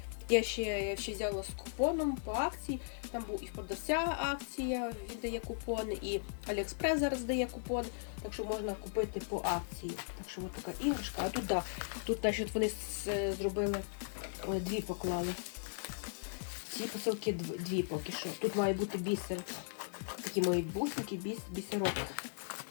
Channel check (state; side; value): silent; right; digital silence